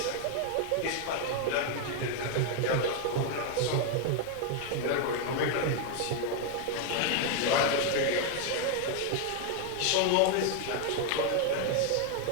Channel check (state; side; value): different; both; correlation 0.01